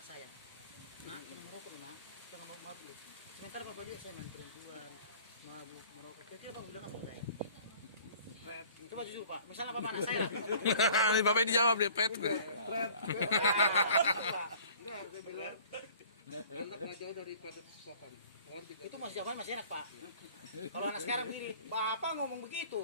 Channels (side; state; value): both; inverted; correlation -0.50